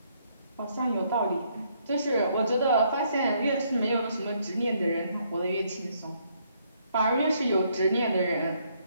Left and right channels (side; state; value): both; inverted; correlation -0.70